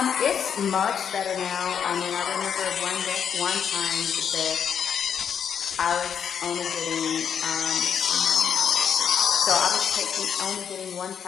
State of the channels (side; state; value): right; quieter; 7.8 dB